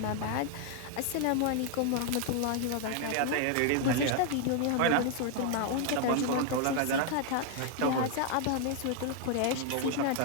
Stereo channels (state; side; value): different; both; correlation 0.00